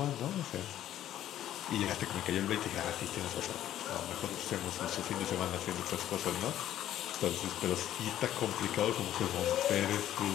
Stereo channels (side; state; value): right; quieter; 12.1 dB